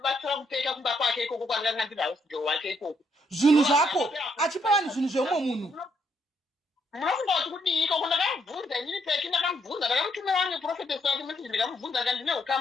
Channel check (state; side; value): normal; both; correlation 0.74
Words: kupeka kumba kwake ikoko kwandanga ndiri hausgirl wake ikoko zvinhu zvako achipa vanhu zvinhu zveumwe munhu munofunga kuti kudii ikoko ndakamubvunza inini peki ndakamubvunza ndakamutumira wange profetesi wake message ndikamubvunza ka ndine